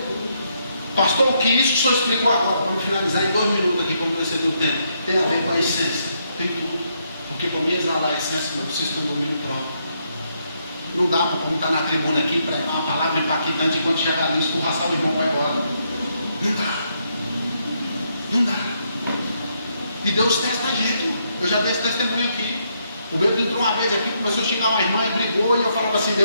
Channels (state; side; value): inverted; both; correlation -0.76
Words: Pastor, o que isso que o senhor explicou agora, vamos finalizar em 2 minutos aqui, como você deu tempo, tem a ver com a essência. Tem tudo. Porque para mim exalar a essência, eu preciso ter um domínio próprio. Não dá para como estar na tribuna aqui, pregar uma palavra impactante, enquanto chegar ali, escorraçar o irmão vai embora. Não dá. Não dá. E Deus testa a gente. Eu já dei esse testemunho aqui. O Pedro entrou uma vez aqui, começou a xingar uma irmã e brigou, e eu falava assim,